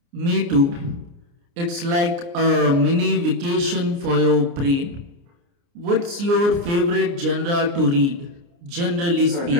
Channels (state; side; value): late; left; 29 ms